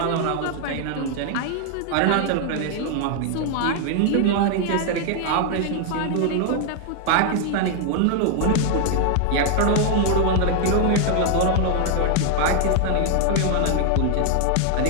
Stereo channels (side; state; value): both; different; correlation 0.00